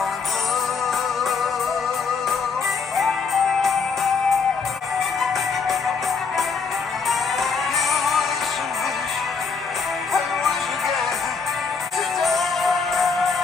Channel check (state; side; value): quieter; right; 5.1 dB